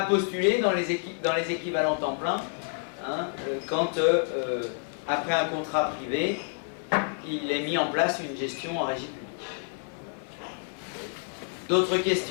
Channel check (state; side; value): silent; right; 59 dB below the other